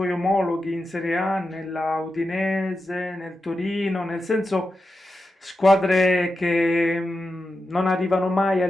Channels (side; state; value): both; normal; correlation 0.90